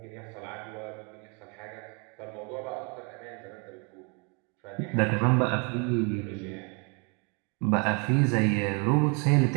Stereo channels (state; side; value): quieter; left; 33.7 dB